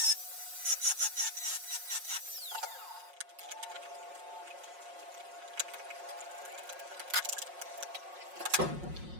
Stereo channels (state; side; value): late; left; 5.5 ms